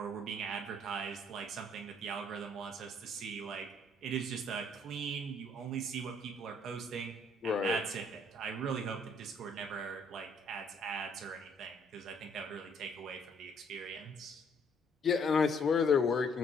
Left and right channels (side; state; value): both; normal; correlation 0.65